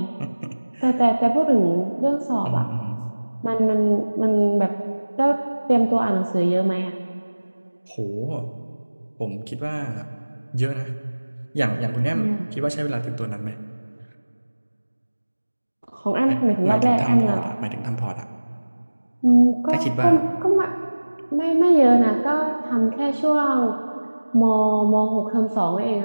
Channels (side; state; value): both; inverted; correlation -1.00